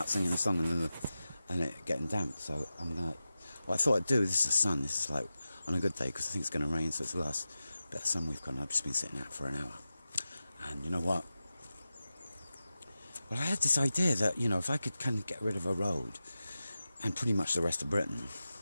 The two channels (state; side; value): inverted; both; correlation -0.93